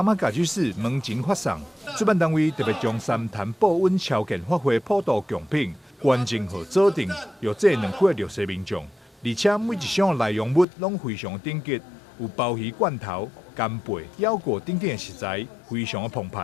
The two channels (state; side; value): drops out; right; at 10.7 s